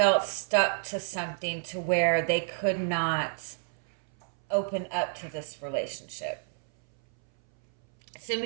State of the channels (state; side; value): silent; left; 58 dB below the other